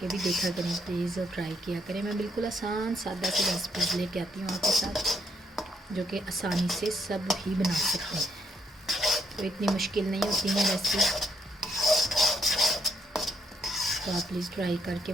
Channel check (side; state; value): both; normal; correlation 0.73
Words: भी देखा करें प्लीज़ और ट्राई किया करें। मैं बिल्कुल आसान सादा सी रेसिपीज़ लेके आती हूँ आपके साथ जो कि आसानी से सब ही बना सकते हैं, तो इतनी मुश्किल नहीं होती है रेसिपी। तो आप प्लीज़ ट्राई करके